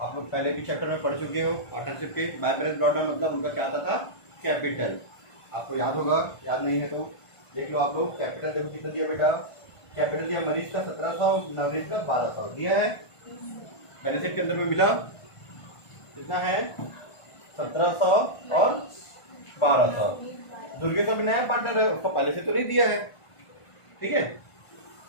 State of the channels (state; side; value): late; right; 1.5 ms